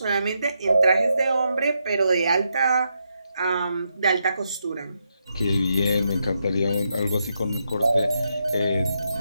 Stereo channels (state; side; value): inverted; both; correlation -0.82